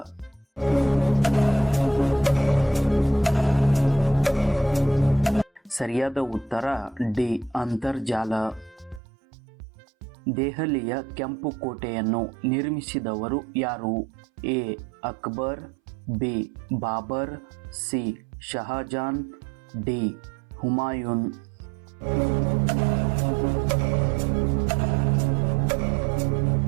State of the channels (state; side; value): drops out; left; at 9.0 s